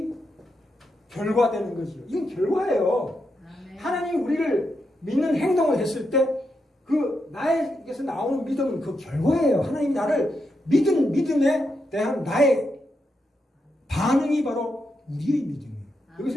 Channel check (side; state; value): both; normal; correlation 0.84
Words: 결과되는 거죠. 이건 결과예요. 하나님이 우리를 믿는 행동을 했을 때 그 나에게서 나오는 믿음은 그 결과예요. 하나님이 나를 믿음에 대한 나의 반응이 바로 우리의 믿음이에요.